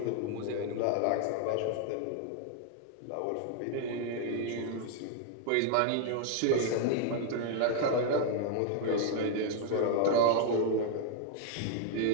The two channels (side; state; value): both; different; correlation 0.00